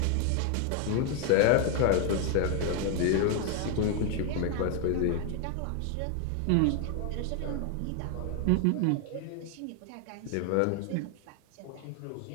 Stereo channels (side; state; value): both; different; correlation 0.00